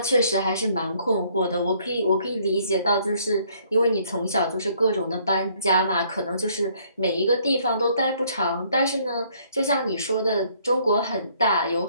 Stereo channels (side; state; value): both; inverted; correlation -0.64